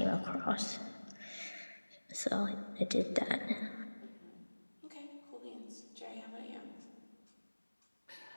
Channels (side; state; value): both; inverted; correlation -1.00